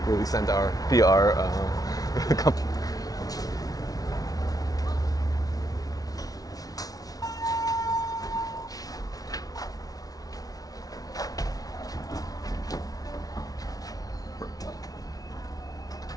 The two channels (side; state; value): right; late; 0.18 ms